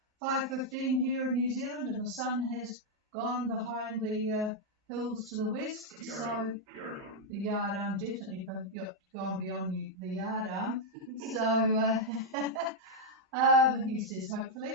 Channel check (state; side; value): normal; both; correlation -0.01